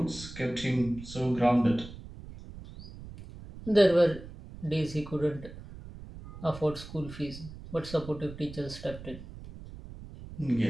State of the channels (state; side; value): noise; right; rumble, 14 dB below the sound